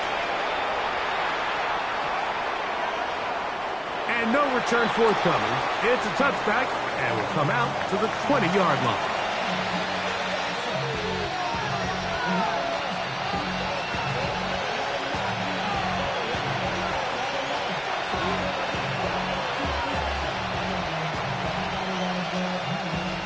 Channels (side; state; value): both; identical; correlation 1.00